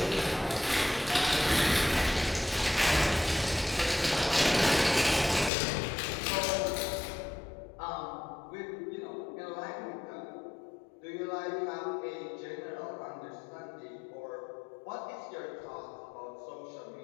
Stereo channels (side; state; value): right; drops out; at 5.5 s